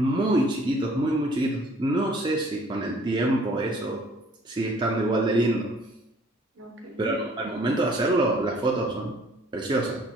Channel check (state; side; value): normal; both; correlation 0.57